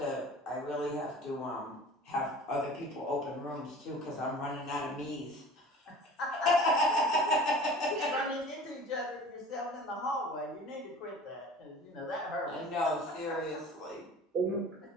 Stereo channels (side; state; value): both; normal; correlation 0.42